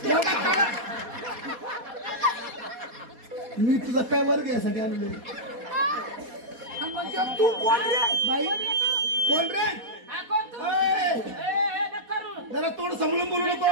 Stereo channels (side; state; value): left; late; 4.2 ms